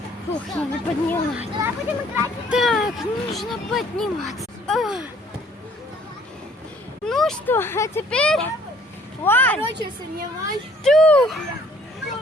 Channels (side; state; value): both; normal; correlation 0.59